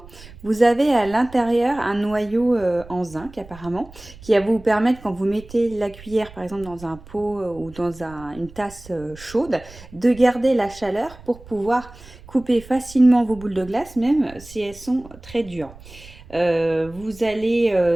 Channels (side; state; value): right; noise; rumble, 19 dB below the sound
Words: Vous avez à l'intérieur un noyau en zinc apparemment qui va vous permettre, quand vous mettez la cuillère par exemple dans un pot ou dans une tasse chaude, de garder la chaleur pour pouvoir couper facilement vos boules de glace même si elles sont très dures. Vous